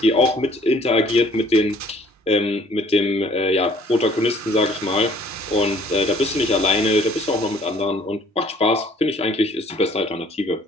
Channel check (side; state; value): both; normal; correlation 0.58